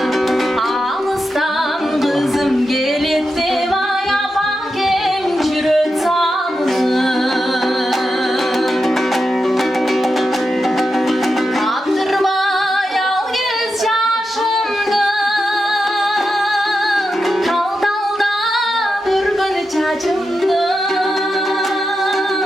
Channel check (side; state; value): both; normal; correlation 0.88